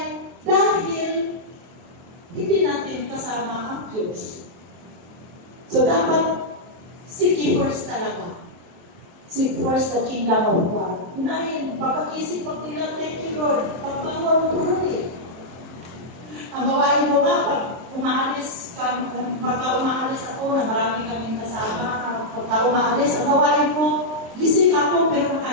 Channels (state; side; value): late; left; 23 ms